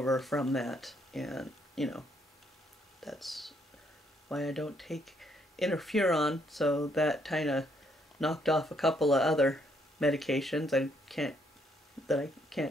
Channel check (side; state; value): both; normal; correlation 0.71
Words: from that, and you know, that's why I don't take interferon. So that kind of knocked off a couple of other medications I can't